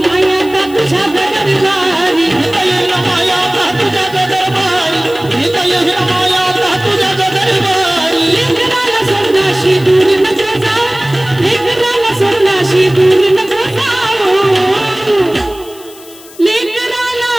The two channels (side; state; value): left; noise; hiss, 21 dB below the sound